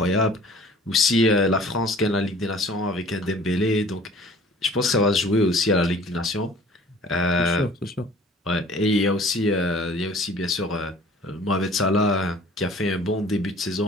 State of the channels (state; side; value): normal; both; correlation 0.49